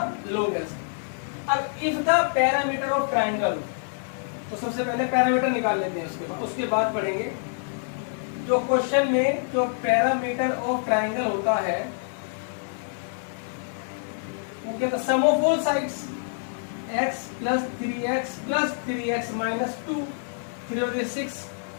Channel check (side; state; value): right; silent; digital silence